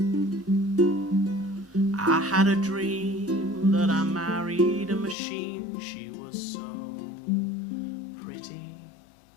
I had a dream that I married a machine. She was so pretty.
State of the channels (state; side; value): drops out; right; at 5.2 s